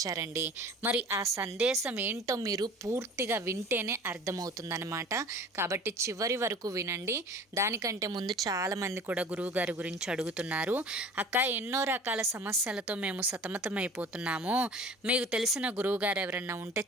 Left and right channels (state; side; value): normal; both; correlation 0.43